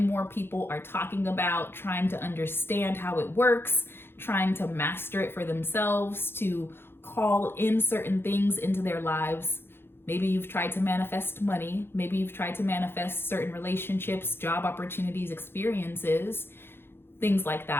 more people are talking about, trying to understand how it works, trying to master it for themselves, to call in certain things into their lives. Maybe you've tried to manifest money. Maybe you've tried to manifest certain relationships, job opportunities, experiences, things like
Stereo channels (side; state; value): right; late; 0.11 ms